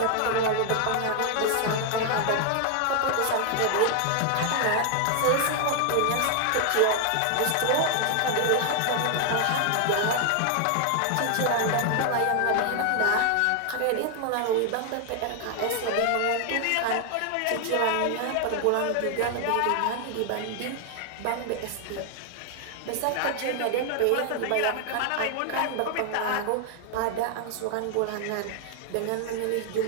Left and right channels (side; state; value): both; different; correlation 0.00